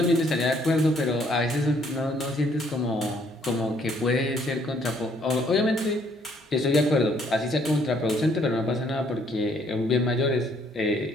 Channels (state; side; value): normal; both; correlation 0.65